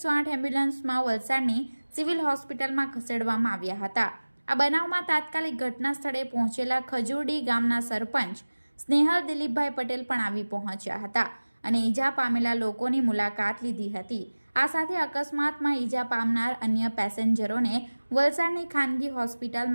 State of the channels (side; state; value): both; inverted; correlation -1.00